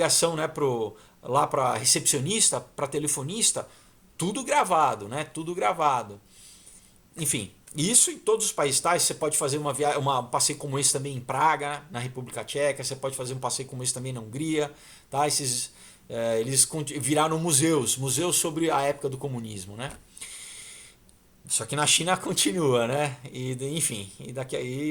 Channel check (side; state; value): both; identical; correlation 1.00